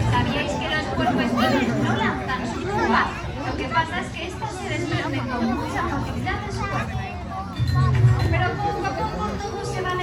¿Sabíais que los puercoespines no lanzan sus púas? Lo que pasa es que estas se desprenden con mucha facilidad de su cuerpo. Pero poco a poco todos se van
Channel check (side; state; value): both; identical; correlation 1.00